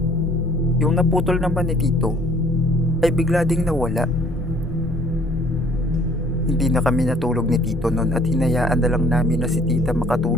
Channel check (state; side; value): normal; both; correlation 0.57